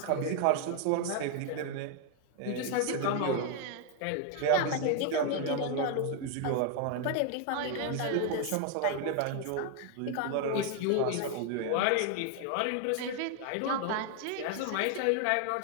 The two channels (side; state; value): both; different; correlation 0.01